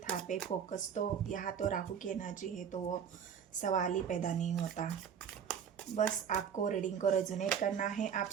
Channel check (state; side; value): quieter; left; 7.8 dB